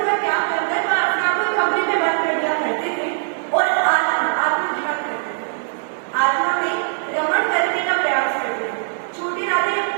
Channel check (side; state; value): left; silent; digital silence